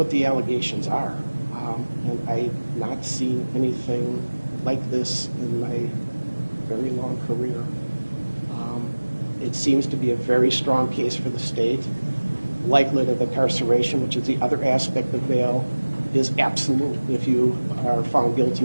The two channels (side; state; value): both; inverted; correlation -1.00